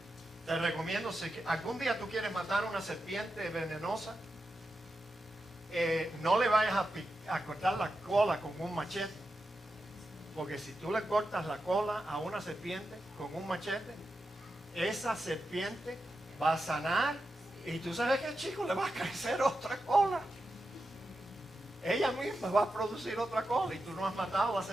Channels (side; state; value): both; normal; correlation 0.89